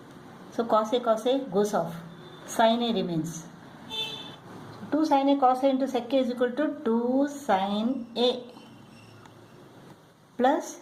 So cos a goes off. Sin a remains. 2 sin a cos a into sec a is equal to 2 sin a plus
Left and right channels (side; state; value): both; identical; correlation 1.00